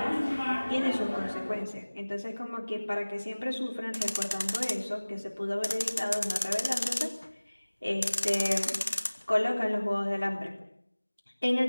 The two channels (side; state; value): both; inverted; correlation -1.00